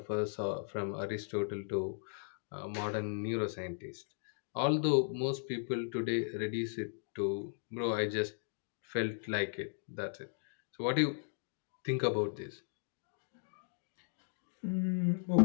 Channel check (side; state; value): right; silent; digital silence